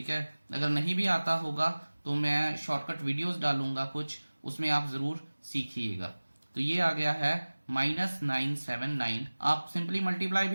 है, अगर नहीं भी आता होगा तो मैं शॉर्टकट वीडियोस डालूंगा कुछ, उसमें आप जरूर सीखिएगा। तो ये आ गया है -979। आप सिंपली मल्टीप्लाई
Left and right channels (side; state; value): both; inverted; correlation -1.00